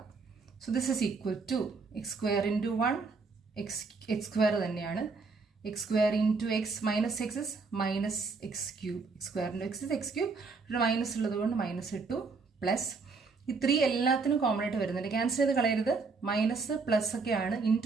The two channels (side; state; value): left; quieter; 4.4 dB